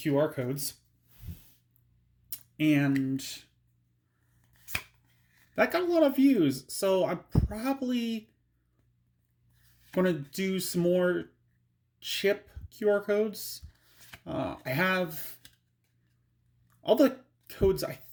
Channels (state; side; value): identical; both; correlation 1.00